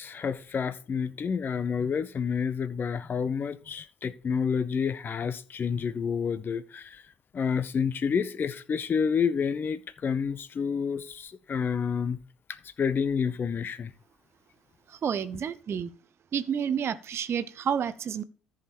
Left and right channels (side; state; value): right; quieter; 3.7 dB